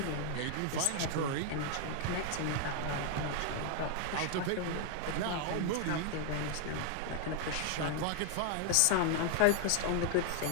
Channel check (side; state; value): both; different; correlation 0.00